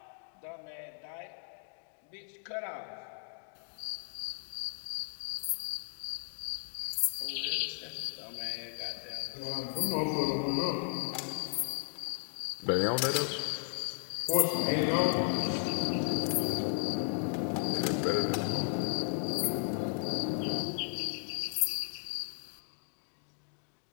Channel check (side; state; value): right; silent; digital silence